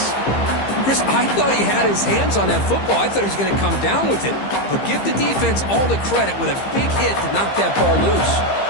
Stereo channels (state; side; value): late; right; 15 ms